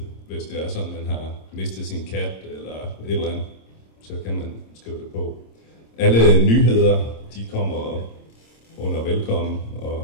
hvis det er sådan, man har mistet sin kat eller et eller andet, så kan man skrive det på. Alle nyheder, de kommer under velkommen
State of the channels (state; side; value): late; right; 26 ms